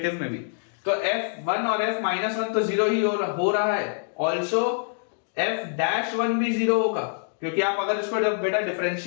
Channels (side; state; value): right; silent; digital silence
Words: में भी। तो f1 और f माइनस 1 तो जीरो ही हो रहा है, ऑल्सो f डैश 1 भी जीरो होगा, क्योंकि आप अगर इसको बेटा